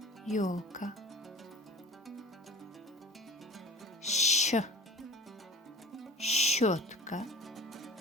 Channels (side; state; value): both; normal; correlation 0.41